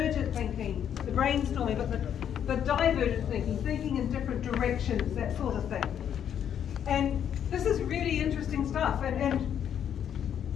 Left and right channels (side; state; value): right; quieter; 9.1 dB